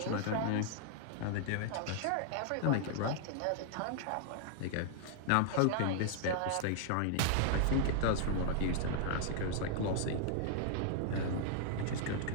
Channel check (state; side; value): different; both; correlation -0.01